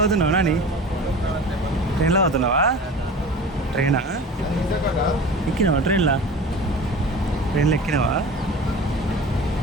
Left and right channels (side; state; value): both; normal; correlation 0.37